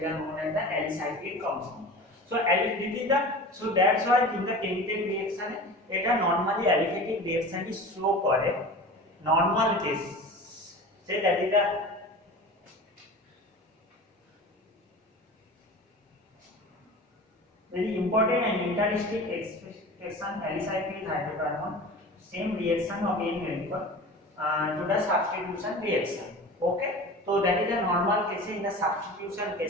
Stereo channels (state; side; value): normal; both; correlation 0.35